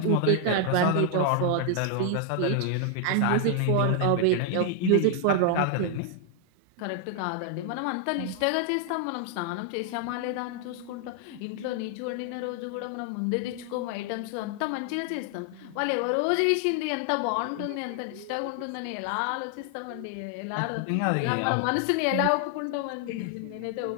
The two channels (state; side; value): different; both; correlation 0.00